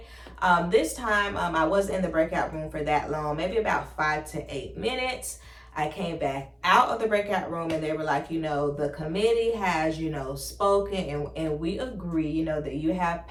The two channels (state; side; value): identical; both; correlation 1.00